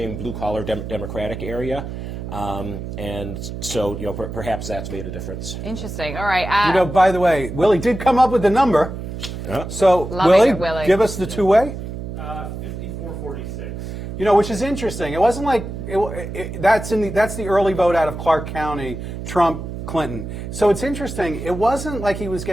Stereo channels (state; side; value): noise; right; hum, 7 dB below the sound